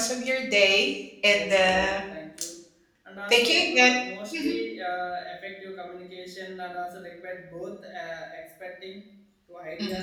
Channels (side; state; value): both; identical; correlation 1.00